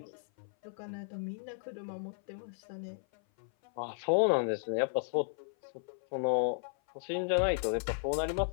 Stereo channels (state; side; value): silent; right; 55 dB below the other